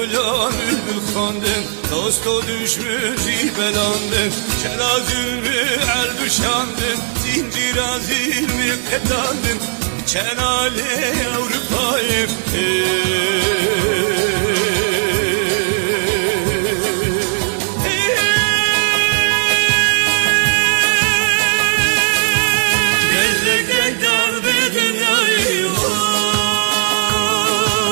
bülbül kandım, dosto düşmüş belandım. Celazülmü el düşandım, zincir azilmi petandım. Çenale Avrupa'yım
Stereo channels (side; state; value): left; silent; digital silence